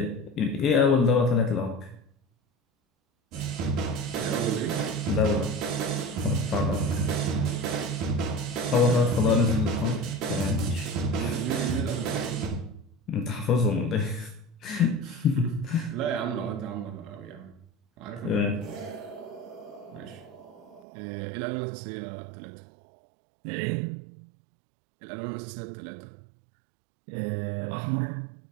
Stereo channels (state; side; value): drops out; left; at 20.8 s